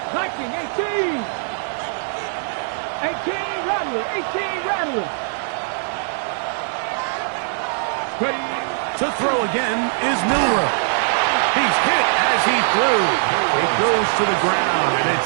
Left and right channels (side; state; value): left; silent; digital silence